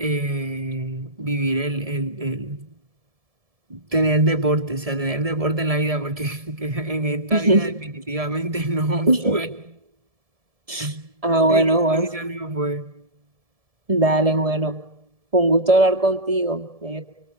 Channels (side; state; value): left; late; 1.7 ms